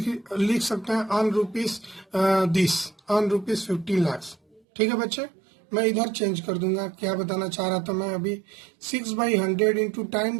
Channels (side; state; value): left; drops out; at 4.6 s